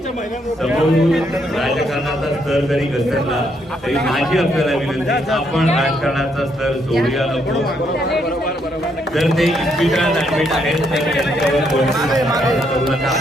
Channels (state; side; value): normal; both; correlation 0.74